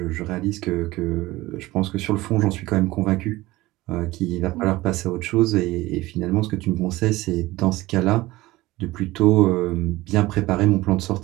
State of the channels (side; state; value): left; quieter; 18.7 dB